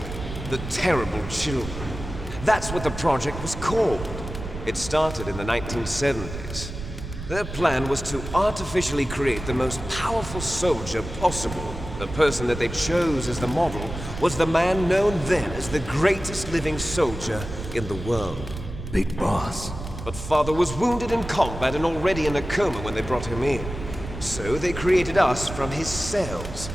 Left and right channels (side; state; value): right; noise; rumble, 9 dB below the sound